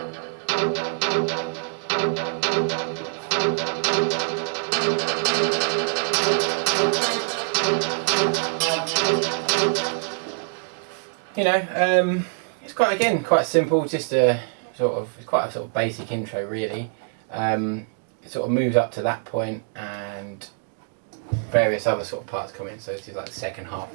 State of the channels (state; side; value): silent; left; digital silence